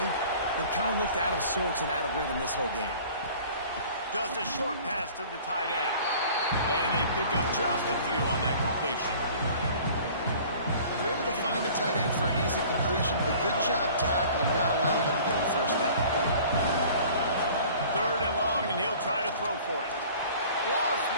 kind of looked out of sorts and out of rhythm this whole game. Just a short pass to the tight end. And they pick up just a few on that completion. They're able to find the tight end for an easy completion, but good job tackling, not allowing him to get the first down. 3rd and long, and he'll try to throw for it. Lost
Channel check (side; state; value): both; inverted; correlation -0.47